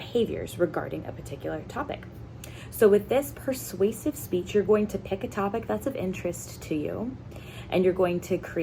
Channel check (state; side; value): identical; both; correlation 1.00